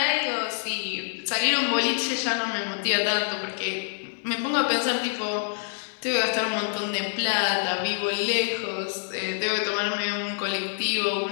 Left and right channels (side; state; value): right; silent; digital silence